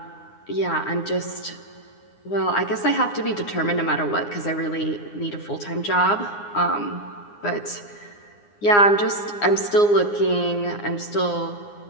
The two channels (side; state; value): right; late; 9.7 ms